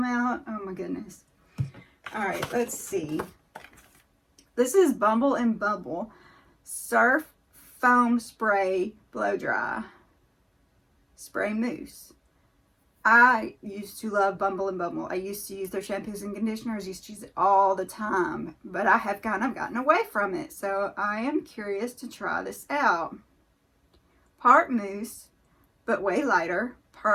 out? Oh my goodness. All right, let's see. This is Bumble Bumble Surf Foam Spray Blow Dry Spray Mousse. I used to love Bumble Bumble. I used to use their shampoos and conditioners. Used to use it all the time. But I have kind of gotten away from it. So I am curious to try this out. Part mousse, but way lighter.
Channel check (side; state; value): both; identical; correlation 1.00